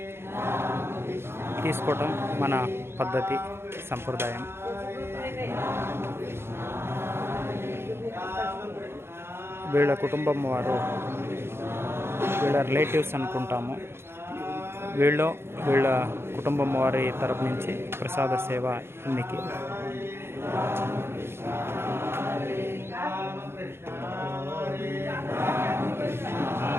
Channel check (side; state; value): left; late; 0.12 ms